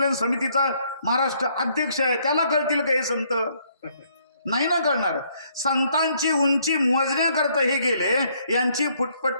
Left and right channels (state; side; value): inverted; both; correlation -0.68